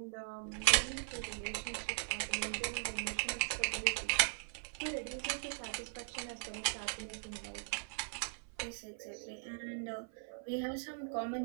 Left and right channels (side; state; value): left; silent; 51 dB below the other